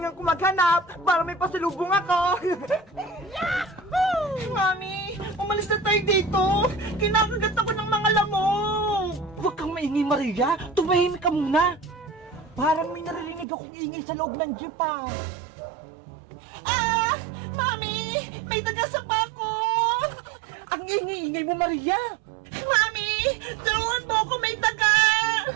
ko maghanap para may pasalubong ako. Mami, umalis na tayo dito. Kinakagat ako ng mga lamok. Huwag kang maingay, Maria. Tumahimik ka muna. Parang may naririnig akong ingay sa loob ng jeep, ah. Ah! Mami! May taga-sapa ko! Ang ingay-ingay mo, Maria! Mami! Tulungan mo ako, may taga!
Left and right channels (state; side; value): drops out; left; at 13.5 s